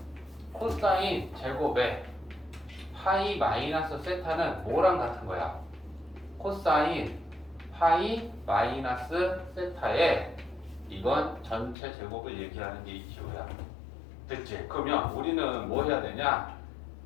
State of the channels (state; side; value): drops out; right; at 11.8 s